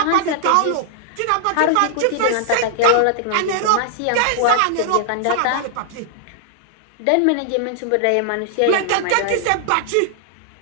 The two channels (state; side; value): different; both; correlation 0.00